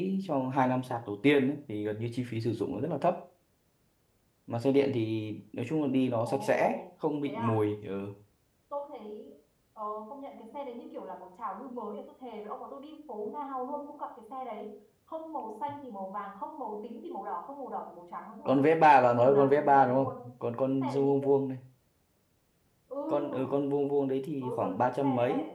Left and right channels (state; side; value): identical; both; correlation 1.00